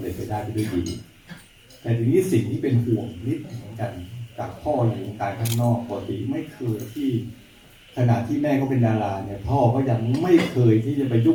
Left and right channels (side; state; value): both; identical; correlation 1.00